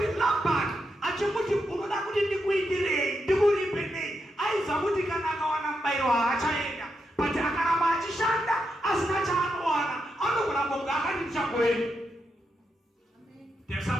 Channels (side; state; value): both; normal; correlation 0.84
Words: Labani achimuti unoda kuti ndikuitirei, ndikuripe nei, aiza kuti kana akawana mubayiro haachaenda. But akaramba achishanda asina chaanowana, anogona kunge akati ndichagoenda. There's